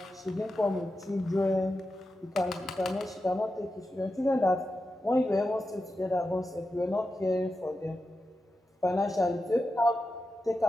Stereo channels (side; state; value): both; normal; correlation 0.90